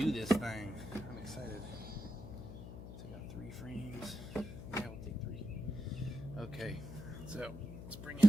this thing. I'm excited. So I got 3 frames. Yeah, we'll take 3. Okay, so let's bring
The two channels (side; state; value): left; noise; hum, 9 dB below the sound